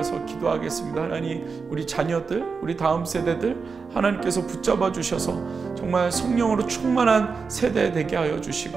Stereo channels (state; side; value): quieter; left; 5.0 dB